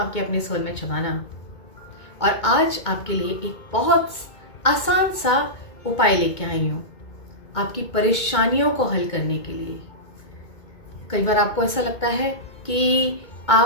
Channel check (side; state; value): right; late; 2.2 ms